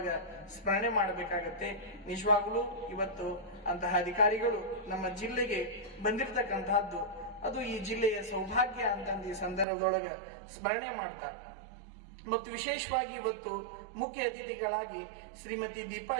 ಸ್ಮರಣೆ ಮಾಡಬೇಕಾಗತ್ತೆ. ನಿಜವಾಗ್ಲೂ ಇವತ್ತು ಅಂತಹ ಅಧಿಕಾರಿಗಳು ನಮ್ಮ ಜಿಲ್ಲೆಗೆ ಬಂದಿರತಕ್ಕಂತಹದ್ದು ಅದು ಈ ಜಿಲ್ಲೆಯ ಸೌಭಾಗ್ಯ ಅಂತಂದು ಈ ಸಂದರ್ಭದೊಳಗ ಸ್ಮರಣೆ ಮಾಡ್ತಾ, ಮತ್ತು ವಿಶೇಷವಾಗಿ ಇವತ್ತು ಮುಖ್ಯ ಅತಿಥಿಗಳಾಗಿ ಶ್ರೀಮತಿ ದೀಪಾ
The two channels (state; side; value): drops out; left; at 9.7 s